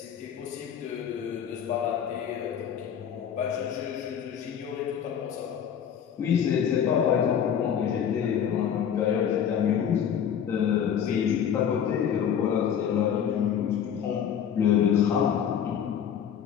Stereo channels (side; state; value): right; quieter; 8.5 dB